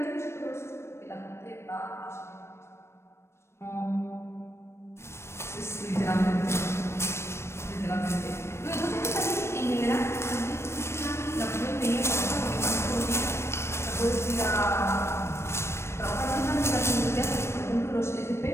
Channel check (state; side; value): late; right; 0.13 ms